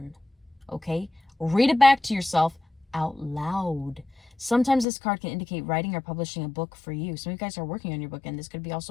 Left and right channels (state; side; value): drops out; right; at 4.9 s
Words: Okay? Read it back to yourself out loud. Sometimes this card can indicate writing or publishing a book for you. Some of you guys are working on your book, and this could be